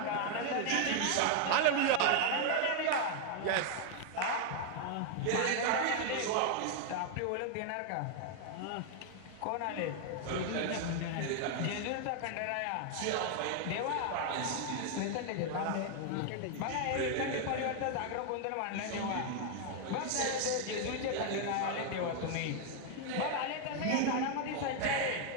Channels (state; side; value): different; both; correlation 0.00